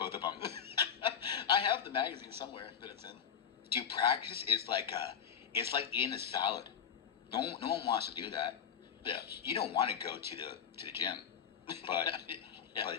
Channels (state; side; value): quieter; right; 8.1 dB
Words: of them. I have the magazine somewhere that it's in. Dude, practice is like it's like eating a salad. No one wants to do that. Yeah. You don't want to go to the gym, but Yeah. but